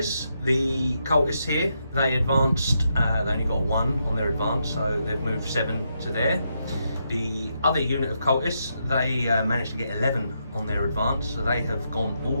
the cultists here, they advanced, they only got 1 on their advance, so they've moved 7 to there. The other unit of cultists, they managed to get 11 on their advance, so they have gone all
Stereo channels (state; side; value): inverted; both; correlation -0.81